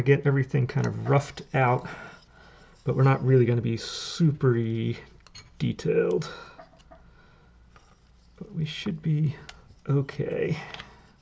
get everything kind of roughed out, but we're not really going to be super detailed. But we should be okay.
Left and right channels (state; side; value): identical; both; correlation 1.00